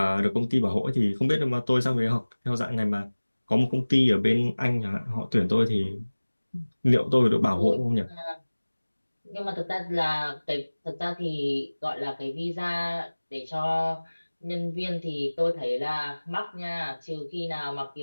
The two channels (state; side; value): inverted; both; correlation -1.00